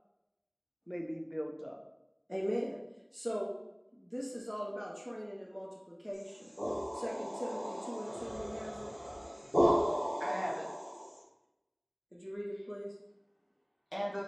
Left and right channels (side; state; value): both; identical; correlation 1.00